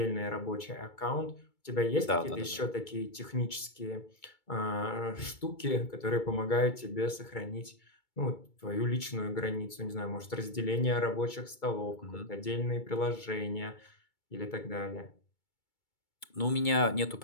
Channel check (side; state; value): right; late; 2.2 ms